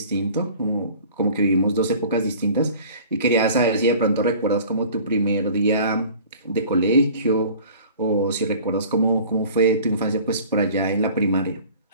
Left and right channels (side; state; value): both; inverted; correlation -0.46